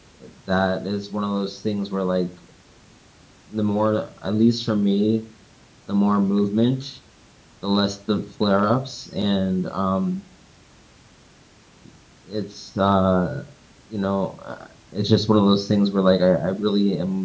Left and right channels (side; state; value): both; identical; correlation 1.00